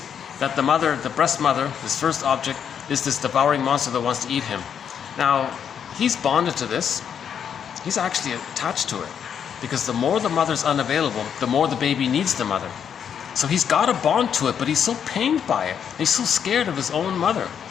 that the mother, the breast mother, his first object, is this devouring monster that wants to eat him. Now, he's bonded to this. He's actually attached to it, because the more the mother's unavailable, the more the baby needs the mother. So he's got a bond to it, but he's so pained by it. He's so scared of his own mother,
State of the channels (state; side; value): quieter; right; 8.0 dB